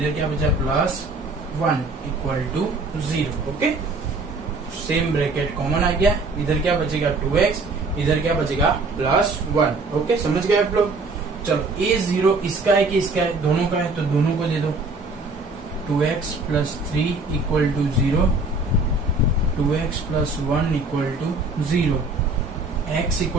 क्या बचा? Plus 1 equal to 0। Okay, same bracket common आ गया, इधर क्या बचेगा? 2x, इधर क्या बचेगा? प्लस 1। ओके, समझ गए आप लोग? चलो ये 0 इसका है कि इसका है? दोनों का है, तो दोनों को दे दो। 2x plus 3 equal to 0, 2x plus 1 equal to 0, x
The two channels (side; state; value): left; quieter; 3.4 dB